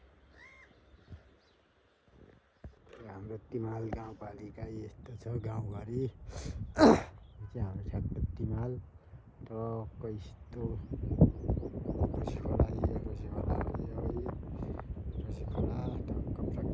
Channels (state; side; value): identical; both; correlation 1.00